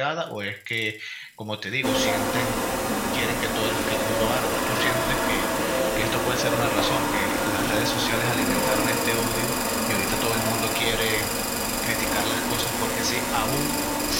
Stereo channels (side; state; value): both; identical; correlation 1.00